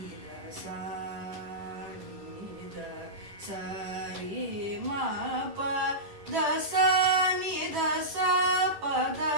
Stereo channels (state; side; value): late; left; 10 ms